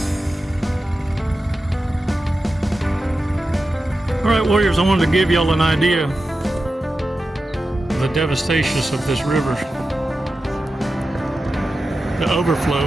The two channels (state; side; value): normal; both; correlation 0.92